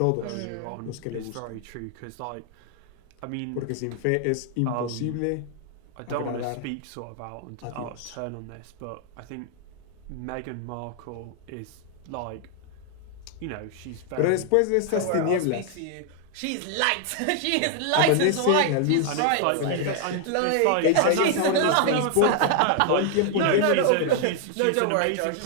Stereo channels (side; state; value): both; different; correlation 0.00